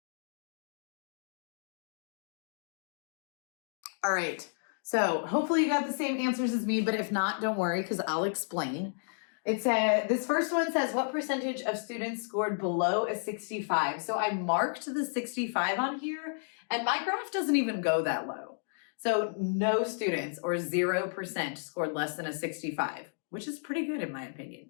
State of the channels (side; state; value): right; silent; digital silence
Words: All right, so hopefully you got the same answers as me, but if not, don't worry because I'll explain. It said, this first one says, what percentage of students scored below a 65? So I marked the 65 on here and my graph doesn't even go that low. So no students or 0% scored less than a 65, which is pretty good in my